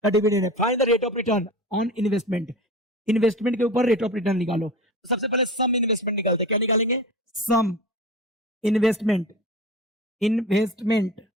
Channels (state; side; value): normal; both; correlation 0.32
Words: का डिविडेंड है। Find the rate of return on investment के ऊपर रेट ऑफ रिटर्न निकालो। तो सबसे पहले सम इन्वेस्टमेंट निकालते हैं। क्या निकालेंगे, सम इन्वेस्टमेंट